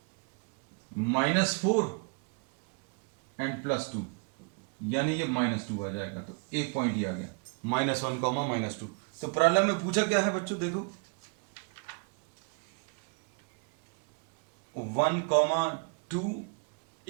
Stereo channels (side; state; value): left; quieter; 34.5 dB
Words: -4 एंड प्लस 2 यानी ये -2 आ जाएगा। तो एक पॉइंट ये आ गया, -1 कॉमा -2। तो प्रॉब्लम में पूछा क्या है बच्चों, देखो 1,2